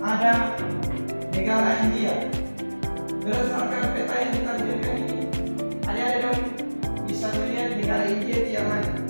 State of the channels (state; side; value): inverted; both; correlation -1.00